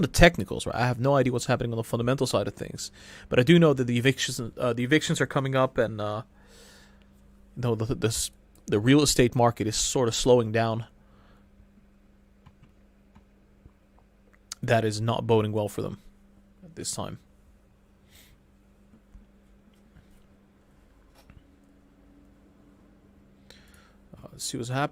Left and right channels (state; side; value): identical; both; correlation 1.00